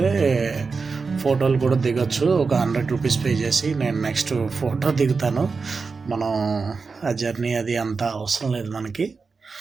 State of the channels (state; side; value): quieter; left; 4.6 dB